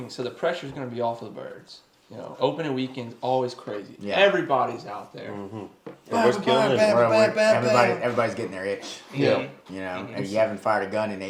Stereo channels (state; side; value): identical; both; correlation 1.00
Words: so the pressure's going to be off of the birds. Opening weekend's always crazy. Yeah. Everybody's out there. Everybody's getting their itch. Yeah. And you haven't fired a gun in